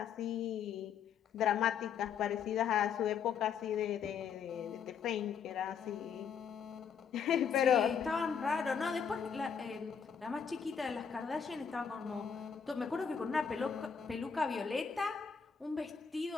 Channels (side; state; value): right; quieter; 7.0 dB